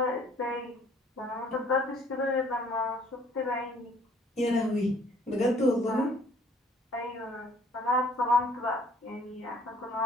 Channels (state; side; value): normal; both; correlation 0.58